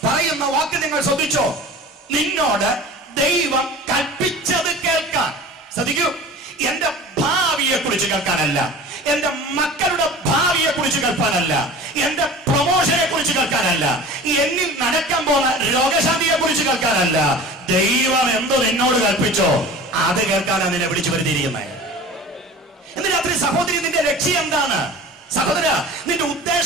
പറയുന്ന വാക്ക് നിങ്ങൾ ശ്രദ്ധിച്ചോ? നിന്നോട് ദൈവം കൽപ്പിച്ചത് കേൾക്കാൻ. ശ്രദ്ധിക്കൂ, എന്റെ ഭാവിയെ കുറിച്ച് കേൾക്കാനല്ല, എന്റെ മക്കളുടെ ഭാവിയെ കുറിച്ച് കേൾക്കാനല്ല, എന്റെ പ്രൊമോഷനെ കുറിച്ച് കേൾക്കാനല്ല, എന്നിൽ നടക്കാൻ പോകുന്ന രോഗശാന്തിയെ കുറിച്ച് കേൾക്കാനല്ല. ദൈവം എന്തോ നിന്നോട് കൽപ്പിച്ചോ അത് കേൾക്കാനാണ് നിന്നെ വിളിച്ചു വരുത്തിയിരിക്കുന്നത്. ഇന്ന് രാത്രി സഹോദരി, നിന്റെ ലക്ഷ്യം എന്താണ്? സഹോദര, നിന്റെ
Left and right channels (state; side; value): normal; both; correlation 0.39